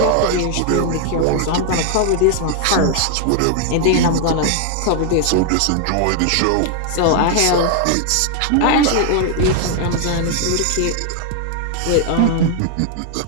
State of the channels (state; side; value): different; both; correlation 0.00